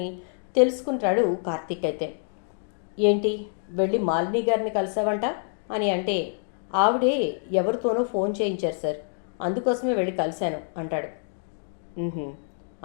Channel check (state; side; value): silent; right; digital silence